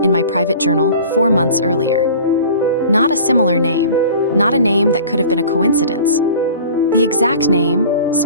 in my private journal 4 months earlier. Not a similar name, not a name that could have been a coincidence. The exact name,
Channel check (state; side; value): inverted; both; correlation -0.43